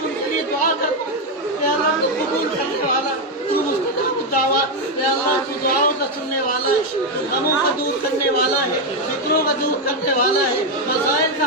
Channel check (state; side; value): normal; both; correlation 0.05